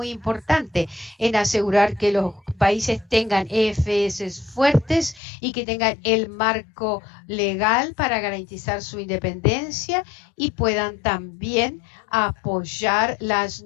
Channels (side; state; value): right; drops out; at 5.2 s